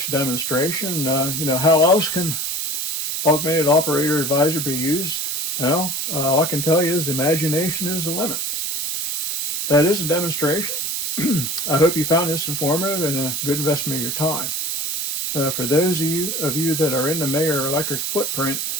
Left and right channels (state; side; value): noise; right; hiss, 1 dB below the sound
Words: a demonstration. How else can Augmented Operator Advisor be used? Well, all I can tell you is imagination is the limit. That is a demonstration. I hope you found this informative and a good investment of your time. For those of you that are in the Mayer Electric footprint,